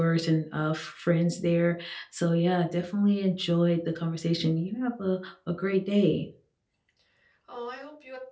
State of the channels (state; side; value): identical; both; correlation 1.00